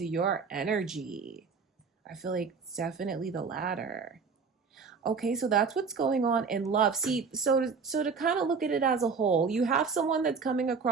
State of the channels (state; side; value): quieter; left; 5.3 dB